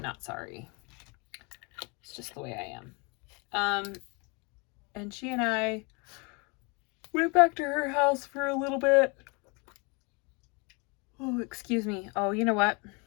sorry. It's just the way I am. And she and I went back to her house for a little bit. Oh, excuse me. Oh, you know what?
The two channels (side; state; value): right; quieter; 30.9 dB